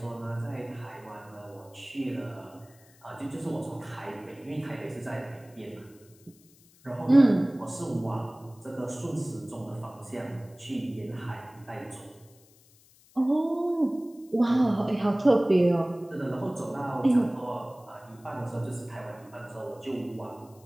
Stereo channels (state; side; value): noise; left; hiss, 28 dB below the sound